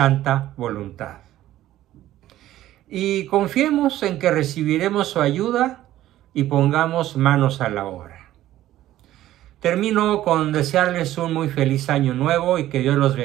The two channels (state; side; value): quieter; left; 13.9 dB